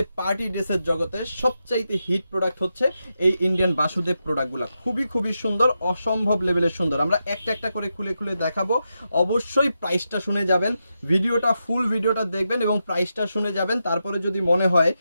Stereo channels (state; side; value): inverted; both; correlation -0.87